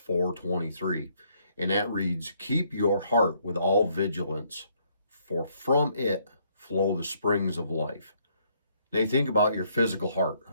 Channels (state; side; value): inverted; both; correlation -0.69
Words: And that reads, "Keep your heart with all vigilance, for from it flow the springs of life." Now you think about your physical heart